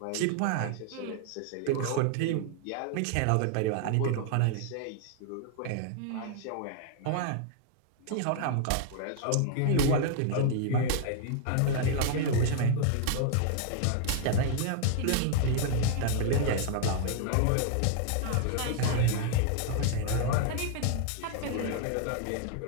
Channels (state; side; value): different; both; correlation 0.00